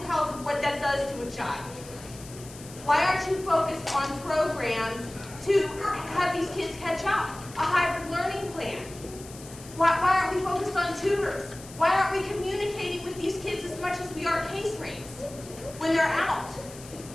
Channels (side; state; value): left; noise; hiss, 17 dB below the sound